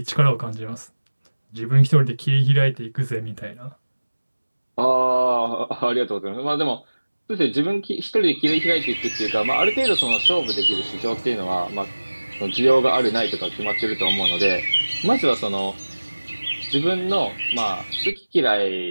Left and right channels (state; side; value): inverted; both; correlation -1.00